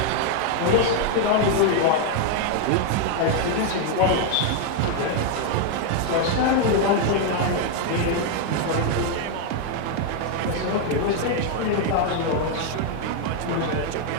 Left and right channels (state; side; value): different; both; correlation 0.00